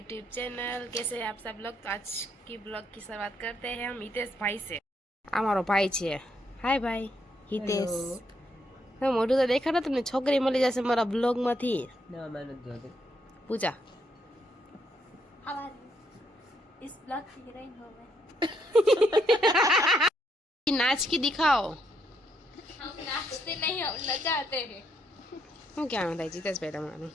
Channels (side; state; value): both; normal; correlation 0.75